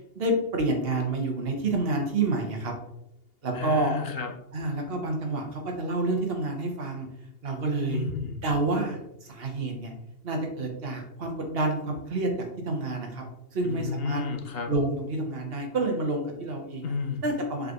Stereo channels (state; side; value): late; left; 2.8 ms